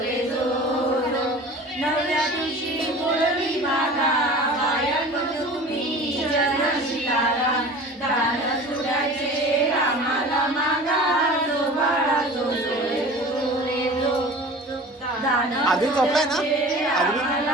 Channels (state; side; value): normal; both; correlation 0.39